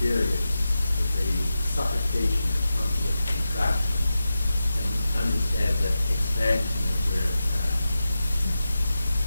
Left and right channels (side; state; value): both; inverted; correlation -0.91